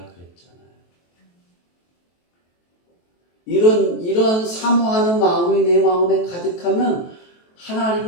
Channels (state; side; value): late; right; 23 ms